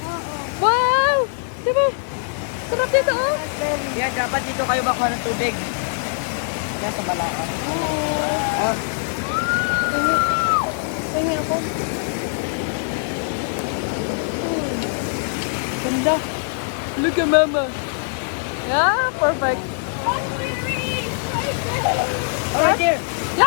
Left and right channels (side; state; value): right; silent; digital silence